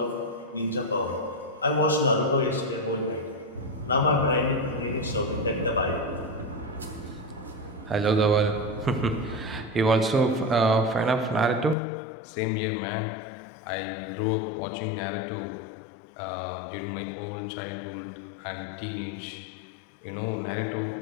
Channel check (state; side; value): drops out; right; at 11.8 s